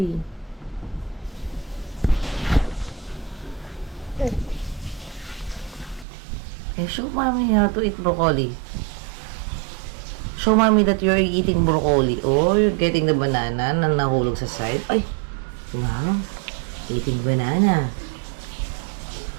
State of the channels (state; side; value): drops out; left; at 6.1 s